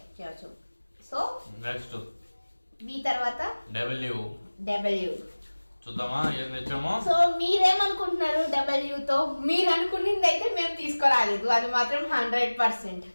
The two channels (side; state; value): both; inverted; correlation -1.00